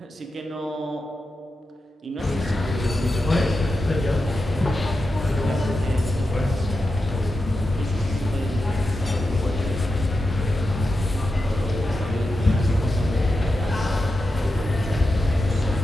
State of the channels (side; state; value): both; normal; correlation 0.90